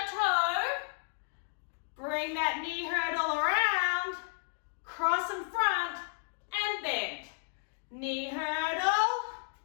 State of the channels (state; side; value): silent; right; digital silence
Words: toe, bring that knee hurdle around, cross in front, and bend. Knee hurdle,